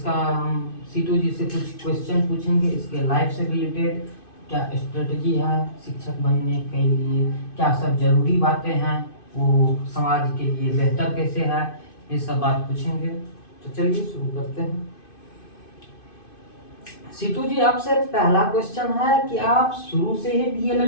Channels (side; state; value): right; late; 2.5 ms